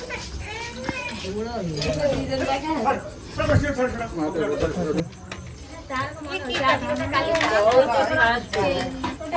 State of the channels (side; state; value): both; identical; correlation 1.00